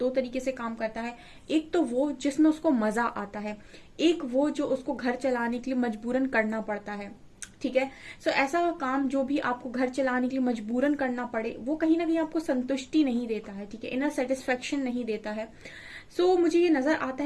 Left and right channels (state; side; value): identical; both; correlation 1.00